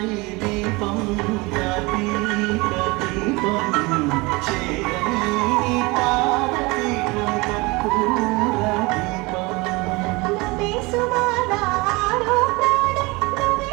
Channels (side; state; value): left; quieter; 24.6 dB